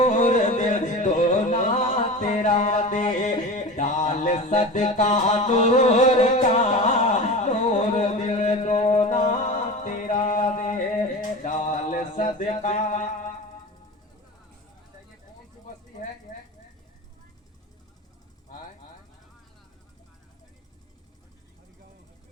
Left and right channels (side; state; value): both; normal; correlation 0.31